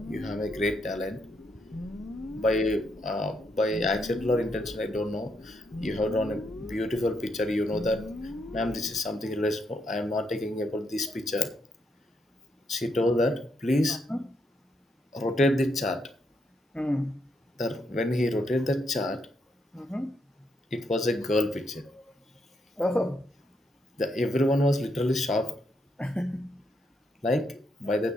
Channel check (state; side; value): normal; both; correlation 0.78